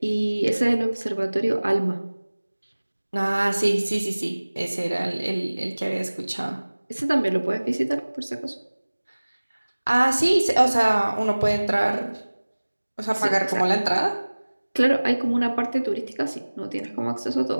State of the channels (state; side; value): inverted; both; correlation -1.00